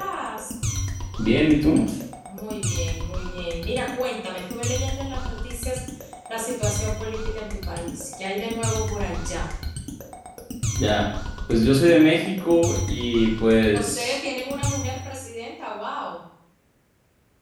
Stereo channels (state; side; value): identical; both; correlation 1.00